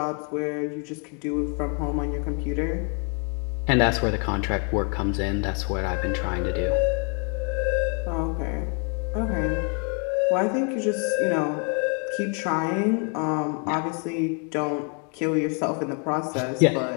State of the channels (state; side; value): quieter; right; 39.0 dB